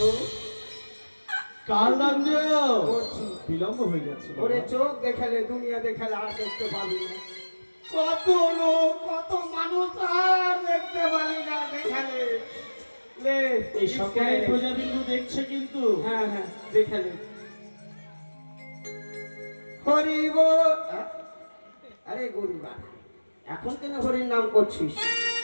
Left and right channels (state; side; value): inverted; both; correlation -1.00